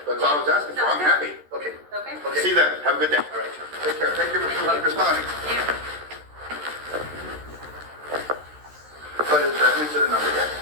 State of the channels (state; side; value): late; left; 13 ms